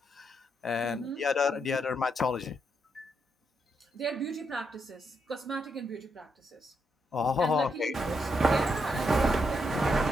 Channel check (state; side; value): normal; both; correlation 0.79